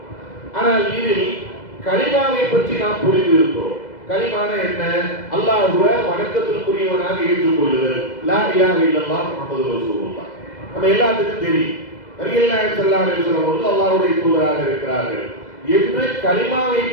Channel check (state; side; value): late; right; 2.0 ms